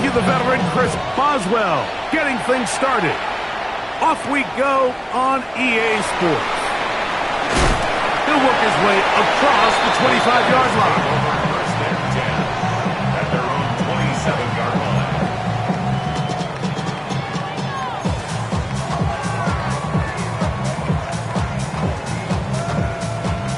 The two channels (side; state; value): both; identical; correlation 1.00